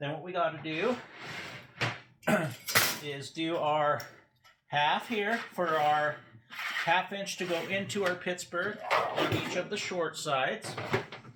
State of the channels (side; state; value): both; identical; correlation 1.00